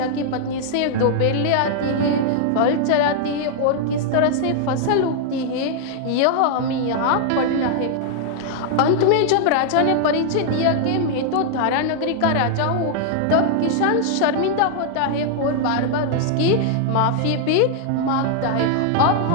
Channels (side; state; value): both; different; correlation -0.01